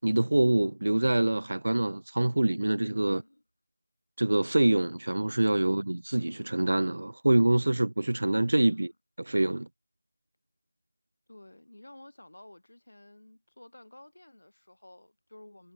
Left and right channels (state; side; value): inverted; both; correlation -1.00